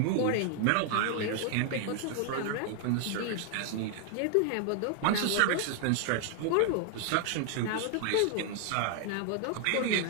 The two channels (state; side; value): different; both; correlation 0.00